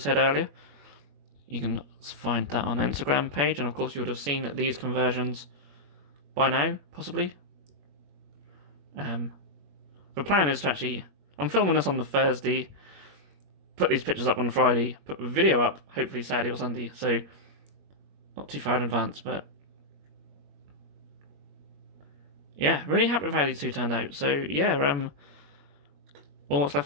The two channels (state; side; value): late; left; 21 ms